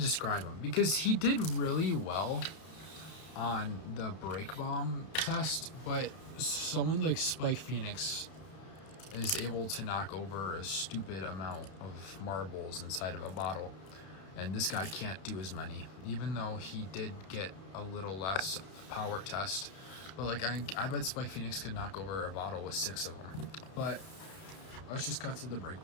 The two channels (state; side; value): late; right; 31 ms